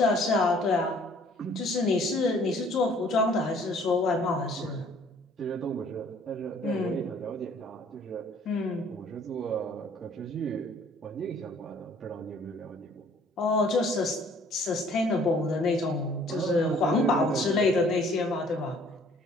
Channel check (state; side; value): normal; both; correlation 0.57